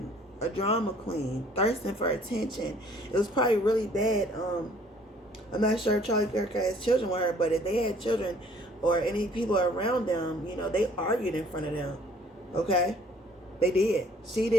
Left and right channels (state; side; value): normal; both; correlation 0.57